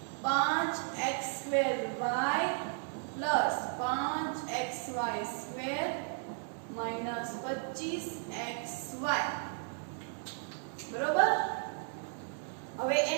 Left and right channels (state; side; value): silent; left; 55 dB below the other